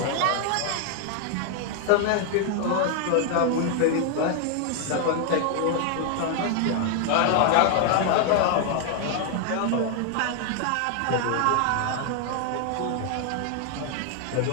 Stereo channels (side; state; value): both; different; correlation 0.00